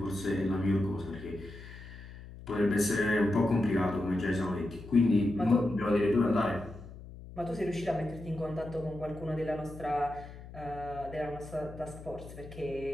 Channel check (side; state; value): left; noise; hum, 15 dB below the sound